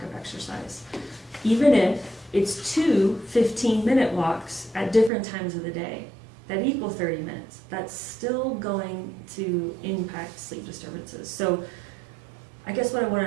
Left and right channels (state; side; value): drops out; left; at 5.1 s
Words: of exercise. Even if it's 2 15-minute walks at different times of the day that equal 30 minutes, that's still going to impact sleep disturbances. So I guess what I want